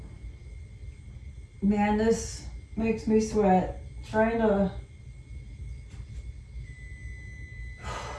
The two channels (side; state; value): both; identical; correlation 1.00